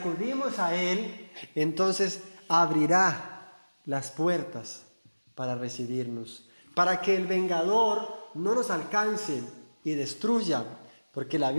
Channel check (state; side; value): inverted; both; correlation -1.00